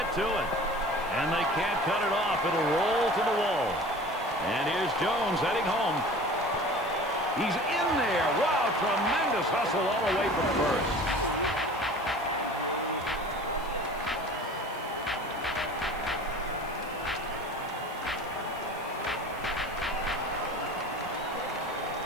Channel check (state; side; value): noise; left; hiss, 22 dB below the sound